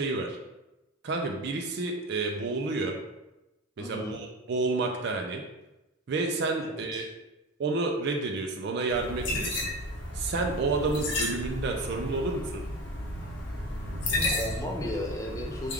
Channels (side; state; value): both; normal; correlation 0.27